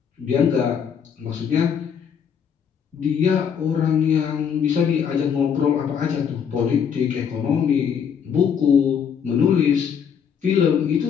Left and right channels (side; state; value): right; quieter; 7.5 dB